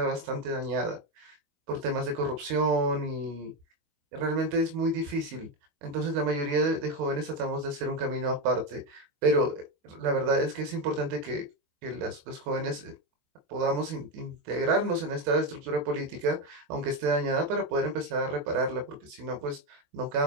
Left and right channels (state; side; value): late; left; 21 ms